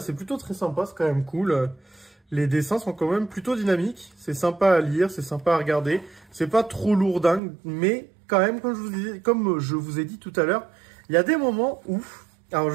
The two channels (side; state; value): left; drops out; at 7.4 s